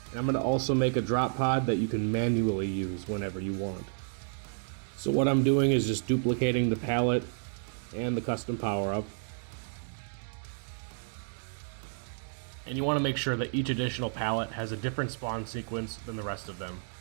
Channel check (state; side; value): silent; left; digital silence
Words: and I'm going to also make a drop pod that you can manually use whenever you want. So what I'm doing is just duplicating the pallet and the custom power-up. And you want to make sure that each additional pallet has a different spawn sequence than the rest of them.